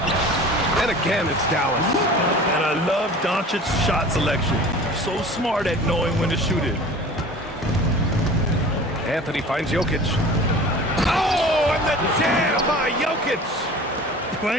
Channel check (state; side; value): normal; both; correlation 0.41